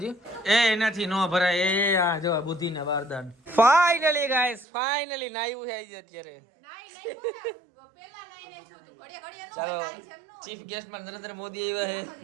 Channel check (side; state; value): left; drops out; at 4.7 s